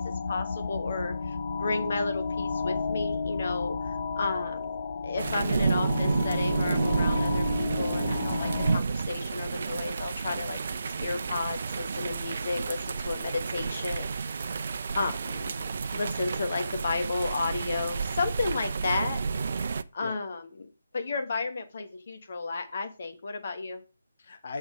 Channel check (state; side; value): inverted; both; correlation -0.84